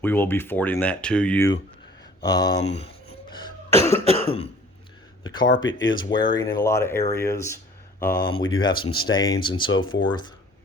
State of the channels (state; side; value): normal; both; correlation 0.51